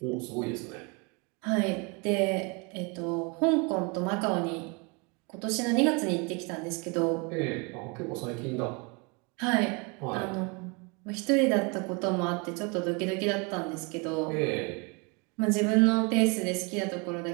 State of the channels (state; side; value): quieter; left; 30.3 dB